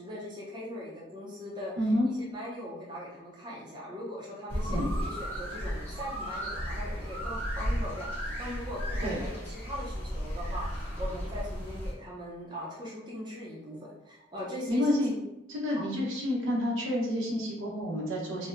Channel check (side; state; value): both; normal; correlation 0.70